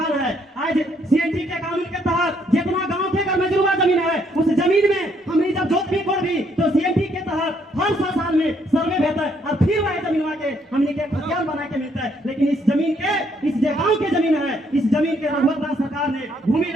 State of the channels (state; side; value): normal; both; correlation 0.70